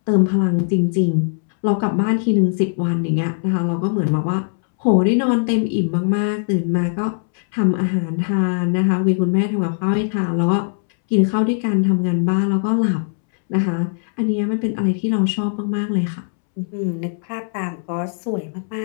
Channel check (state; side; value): silent; right; 66 dB below the other